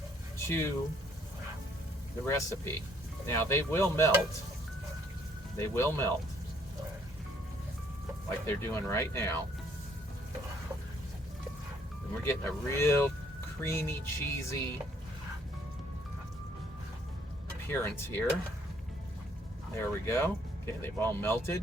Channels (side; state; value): both; normal; correlation 0.65